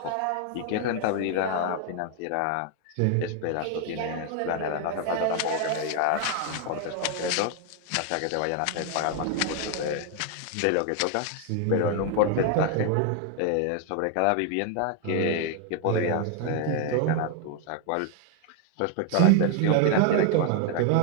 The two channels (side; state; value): both; different; correlation 0.00